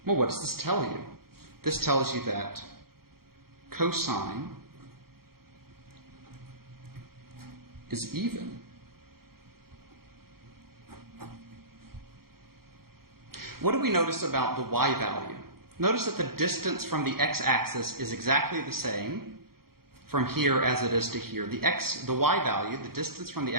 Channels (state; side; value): late; left; 0.94 ms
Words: Well, what does this tell you? This tells you that cosine is even. What do we notice about the y value? Notice that the distance from the x-axis is exactly the same from here as it is to here. The y value, the distance from the